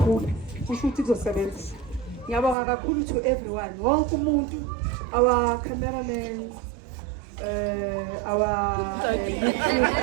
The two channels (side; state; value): left; drops out; at 2.6 s